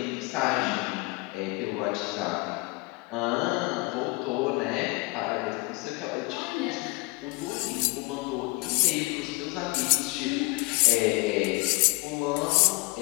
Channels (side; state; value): right; quieter; 25.2 dB